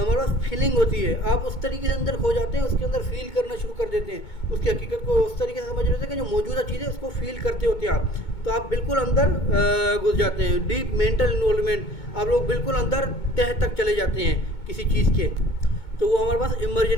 पास फीलिंग होती है, आप उस तरीके से अंदर खो जाते हैं, उसके अंदर फील करना शुरू कर देते हैं, उसकी हकीकत को उस तरीके से समझ लेते हैं कि जो मौजूदा चीज़ है उसको फील करते होते हैं आप, तो आप बिल्कुल अंदर घुस जाते हैं। डीप मेंटल इन्वॉल्वमेंट, आप लोग बिल्कुल अंदर तह तक चले जाते हैं किसी चीज़ के, तो वो हमारे पास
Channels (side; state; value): right; late; 2.2 ms